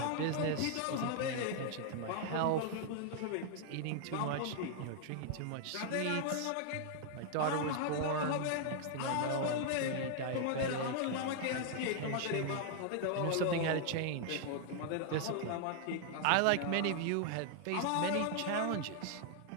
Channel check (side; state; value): both; different; correlation 0.00